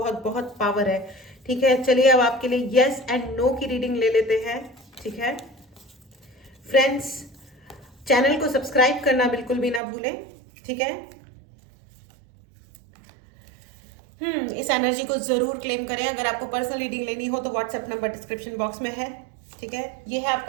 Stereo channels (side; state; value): left; drops out; at 9.8 s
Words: बहुत पावर है, ठीक है। चलिए अब आपके लिए यस एंड नो की रीडिंग ले लेते हैं, ठीक है फ्रेंड्स। चैनल को सब्सक्राइब करना बिल्कुल भी ना भूलें, ठीक है। इस एनर्जी को जरूर क्लेम करें। अगर आपको पर्सनल रीडिंग लेनी हो तो व्हाट्सएप नंबर डिस्क्रिप्शन बॉक्स में है, ठीक है। ये है